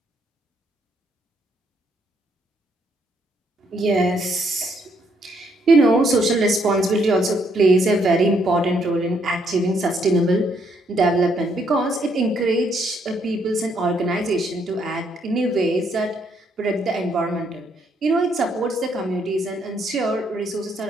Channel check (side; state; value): both; normal; correlation 0.72